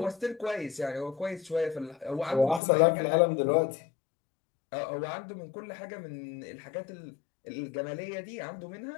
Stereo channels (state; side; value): drops out; right; at 2.6 s